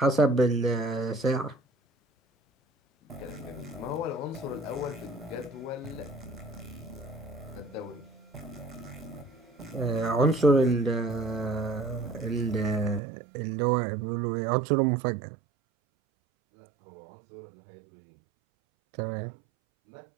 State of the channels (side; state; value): left; drops out; at 13.0 s